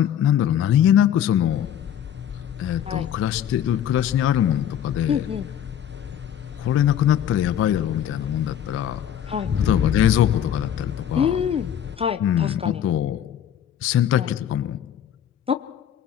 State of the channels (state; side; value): quieter; right; 9.9 dB